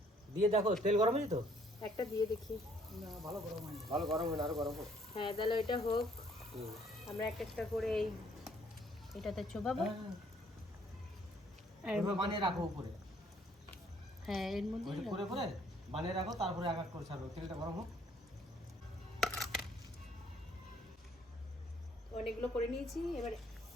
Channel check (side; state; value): both; normal; correlation 0.63